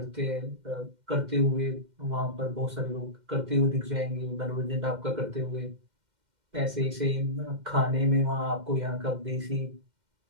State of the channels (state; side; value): late; left; 2.1 ms